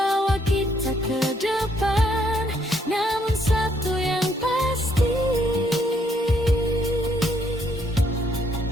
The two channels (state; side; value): normal; both; correlation 0.70